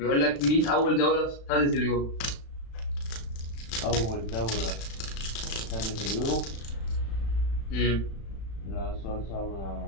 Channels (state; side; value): late; right; 36 ms